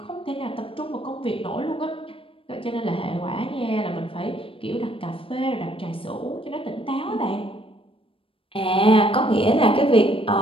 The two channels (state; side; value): late; right; 0.26 ms